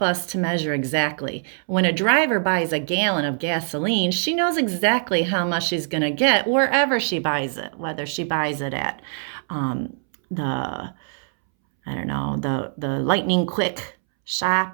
us to measure exactly. When a driver buys a gallon of gasoline, she knows exactly how much she's going to get wherever she buys it, whether she buys it at the Lightning Quick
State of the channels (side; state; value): left; silent; 63 dB below the other